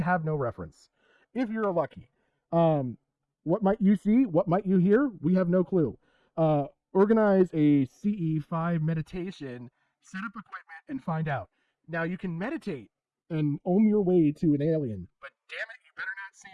have no reference. If you're lucky. What might you see? What might you hear? We have no clue. Organize a CE5 meditation, set up equipment, and find out. Now, you can meditate and ohm your way to an alien, but damn it, you better not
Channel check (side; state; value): both; identical; correlation 1.00